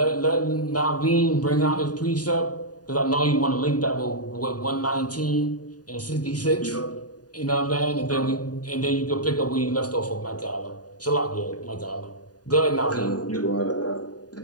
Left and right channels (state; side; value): late; right; 0.68 ms